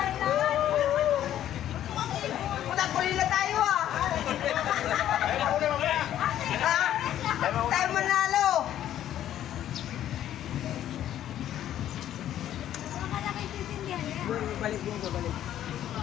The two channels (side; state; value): right; quieter; 11.6 dB